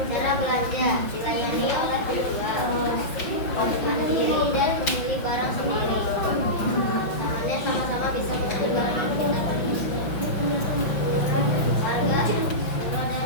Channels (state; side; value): late; right; 5.6 ms